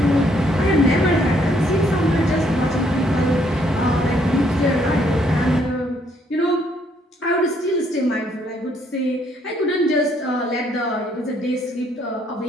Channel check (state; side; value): normal; both; correlation 0.69